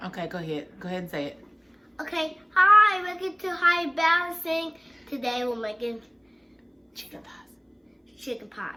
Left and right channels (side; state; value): both; identical; correlation 1.00